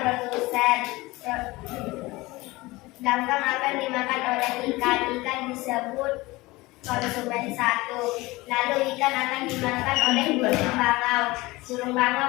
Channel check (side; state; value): right; quieter; 21.1 dB